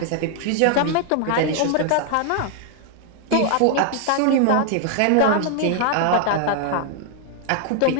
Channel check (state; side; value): different; both; correlation 0.00